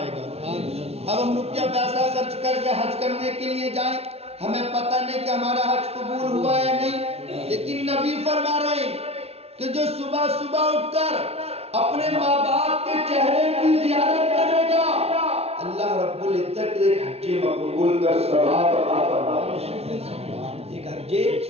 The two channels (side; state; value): left; late; 0.30 ms